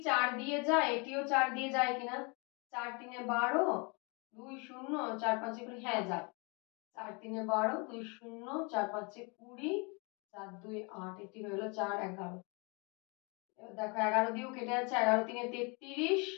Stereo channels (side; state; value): right; quieter; 31.4 dB